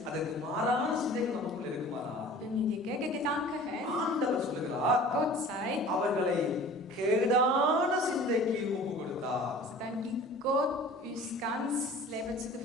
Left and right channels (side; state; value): both; normal; correlation 0.44